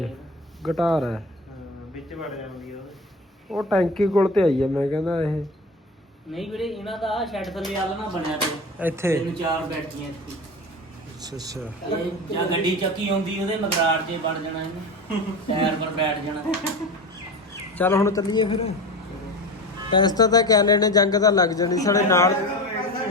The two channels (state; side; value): normal; both; correlation 0.29